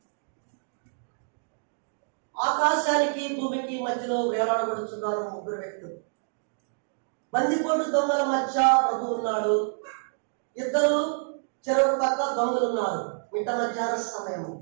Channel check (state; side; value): silent; left; digital silence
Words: ఆకాశానికి భూమికి మధ్యలో వేలాడబడుతున్నారు ముగ్గురు వ్యక్తులు. బందిపోటు దొంగల మధ్య ప్రభు ఉన్నాడు. ఇద్దరు చెరువు పక్క దొంగలు ఉన్నారు. మిట్ట మధ్యాహ్న సమయం.